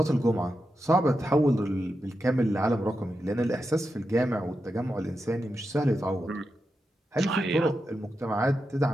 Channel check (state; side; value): normal; both; correlation 0.88